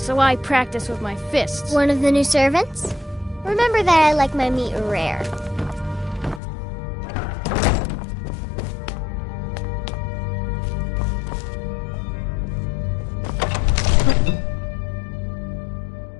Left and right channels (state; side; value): drops out; right; at 6.4 s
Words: I practice with my fists. One of the new servants? Remember that I like my meat rare.